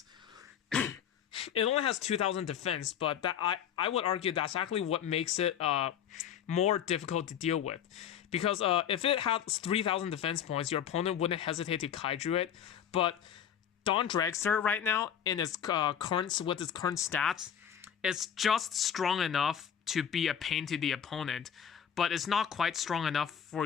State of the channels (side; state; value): right; quieter; 8.9 dB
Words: It only has 2,000 defense, but that I would argue that's actually what makes it more difficult to deal with. Because if it had 3,000 defense points, your opponent wouldn't hesitate to kaiju it. But Dawn Dragster right now, in its current stats, it's just strong enough to be a pain to the opponent, but it's not quite strong enough for